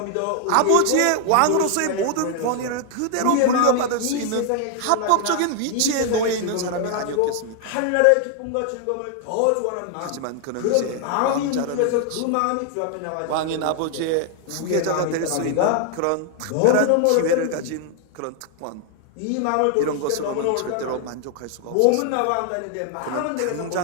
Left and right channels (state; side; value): different; both; correlation 0.00